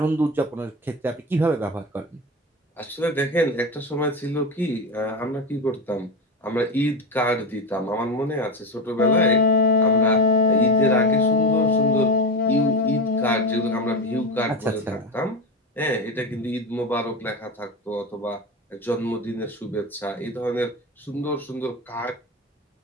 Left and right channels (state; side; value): normal; both; correlation 0.20